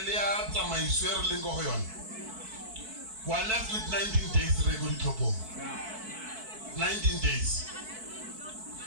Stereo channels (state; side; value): late; left; 4.6 ms